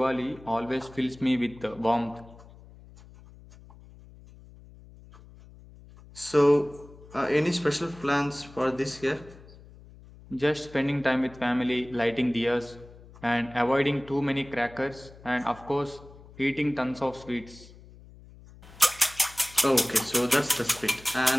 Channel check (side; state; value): left; noise; hum, 21 dB below the sound